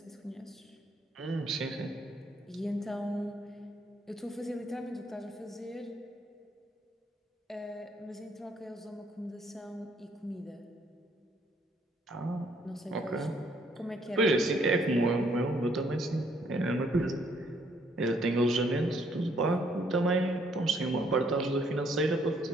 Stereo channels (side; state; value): both; normal; correlation 0.68